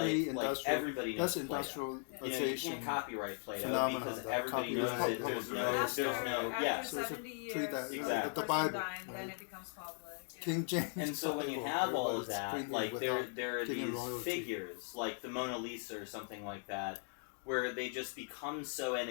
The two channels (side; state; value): right; silent; 52 dB below the other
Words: pre-industrial. everybody That's knows Play-Doh. You industrialization. can't copyright Play-Doh phenomenon, because the everybody knows copyright, that there's the no, other there's stuff. no, yeah. So it's a 70 pre years, that Exactly. the Bible, Then right? it becomes public. Yeah. King James And so when you Bible. have all of Everybody's that, printing like without there are giving these royalty. figures, like the Mona Lisa or something like that, where they just become so